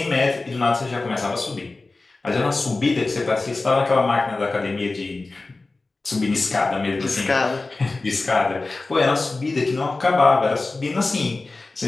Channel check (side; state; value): right; quieter; 3.4 dB